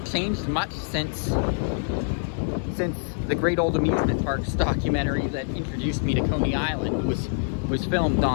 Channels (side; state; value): right; silent; digital silence